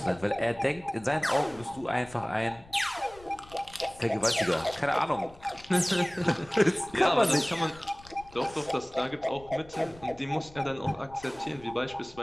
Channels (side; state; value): left; noise; rumble, 22 dB below the sound